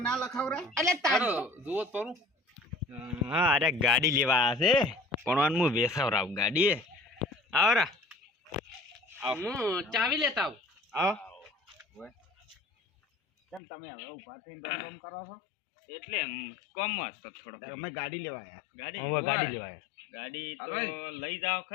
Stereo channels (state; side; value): drops out; right; at 13.6 s